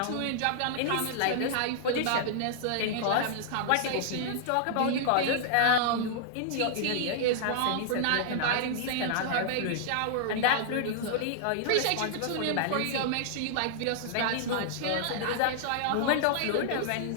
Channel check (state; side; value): different; both; correlation -0.01